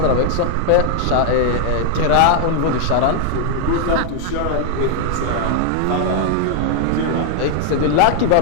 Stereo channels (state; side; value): different; both; correlation 0.00